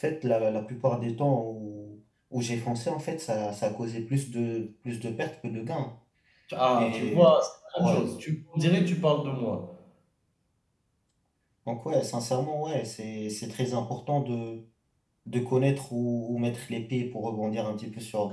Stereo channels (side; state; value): both; identical; correlation 1.00